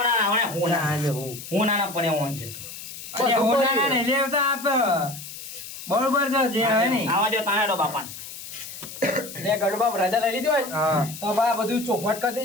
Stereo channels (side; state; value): left; noise; hiss, 12 dB below the sound